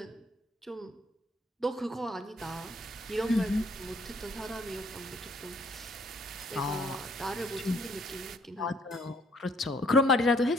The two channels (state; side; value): normal; both; correlation 0.64